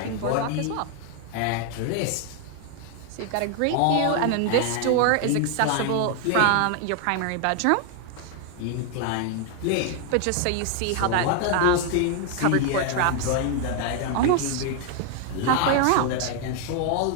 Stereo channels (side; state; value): both; different; correlation 0.00